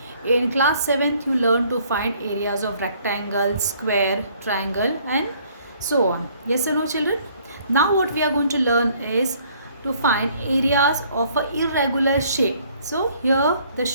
In class 7th you learned to find areas of rectangle, square, triangle and so on. Yes or no children? Now what we are going to learn is to find areas of a irregular shape. So here the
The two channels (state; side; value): inverted; both; correlation -0.61